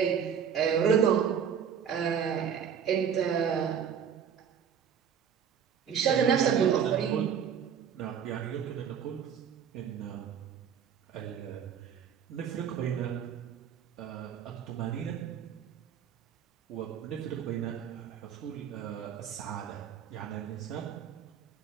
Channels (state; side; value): quieter; left; 7.8 dB